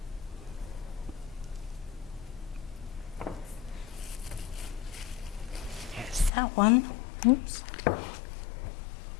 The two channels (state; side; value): drops out; right; at 6.3 s